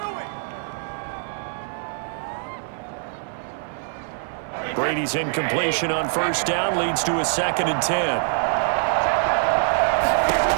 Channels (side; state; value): left; silent; 63 dB below the other